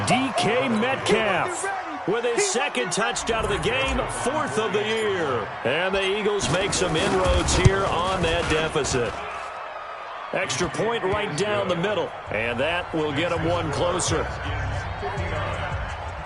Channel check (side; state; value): both; identical; correlation 1.00